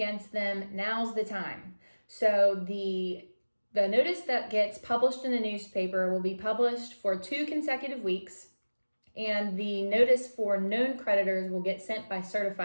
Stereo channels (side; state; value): both; inverted; correlation -1.00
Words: them, now's the time. So the notice that gets published in the newspaper will be published for 2 consecutive weeks, and the notice for known creditors will get sent by